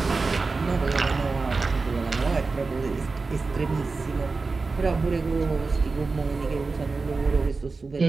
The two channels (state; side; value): quieter; left; 4.0 dB